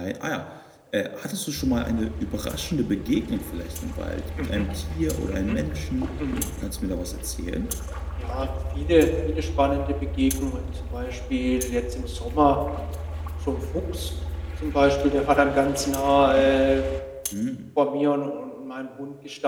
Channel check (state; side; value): identical; both; correlation 1.00